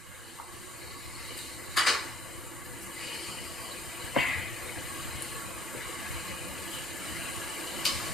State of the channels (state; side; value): normal; both; correlation 0.58